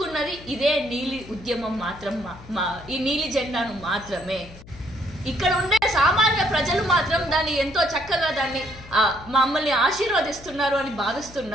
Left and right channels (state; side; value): noise; left; hum, 19 dB below the sound